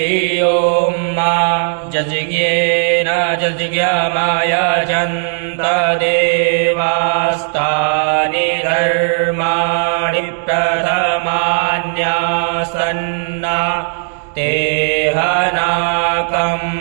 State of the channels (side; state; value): left; silent; 69 dB below the other